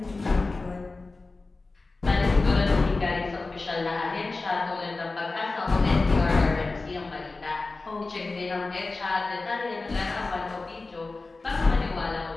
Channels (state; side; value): quieter; right; 3.5 dB